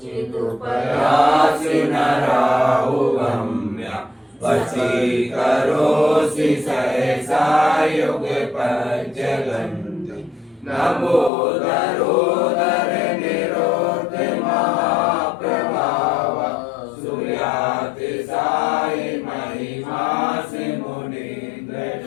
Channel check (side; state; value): right; drops out; at 11.3 s